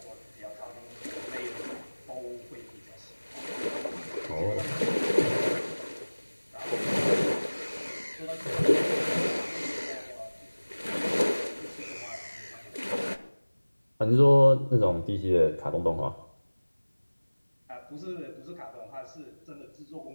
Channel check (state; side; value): inverted; both; correlation -1.00